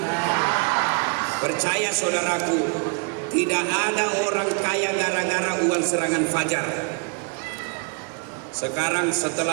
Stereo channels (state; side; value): quieter; left; 35.7 dB